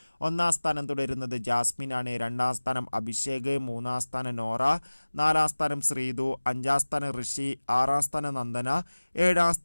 ഒന്നാം സ്ഥാനം തുടരുന്നത് ജാസ്മിൻ ആണ്. രണ്ടാം സ്ഥാനം അഭിഷേക്, മൂന്നാം സ്ഥാനം നോറ, നാലാം സ്ഥാനം ശ്രീതു, അഞ്ചാം സ്ഥാനം ഋഷി, ആറാം സ്ഥാനം നന്ദന, ഏഴാം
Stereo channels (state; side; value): inverted; both; correlation -1.00